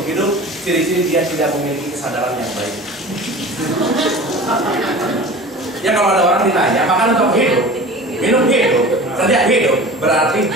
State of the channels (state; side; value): normal; both; correlation 0.38